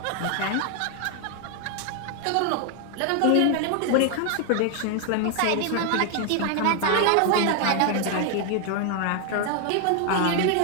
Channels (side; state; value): both; different; correlation 0.00